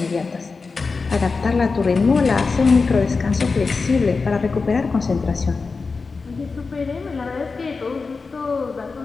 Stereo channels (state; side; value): quieter; right; 4.4 dB